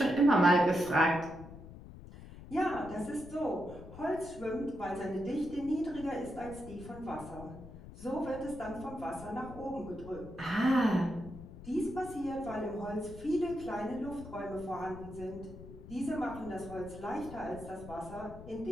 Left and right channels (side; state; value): left; noise; rumble, 15 dB below the sound